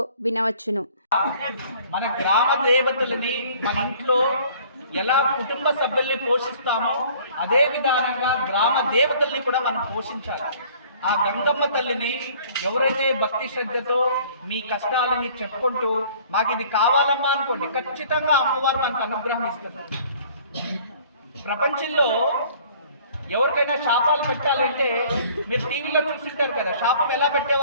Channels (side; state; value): both; inverted; correlation -0.53